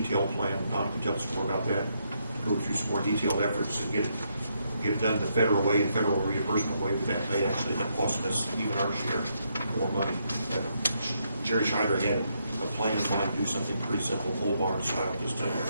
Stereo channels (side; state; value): both; inverted; correlation -0.77